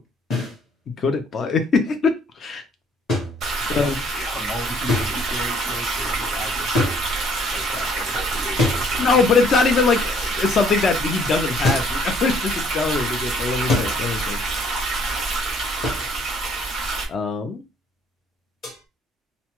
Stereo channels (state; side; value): normal; both; correlation 0.62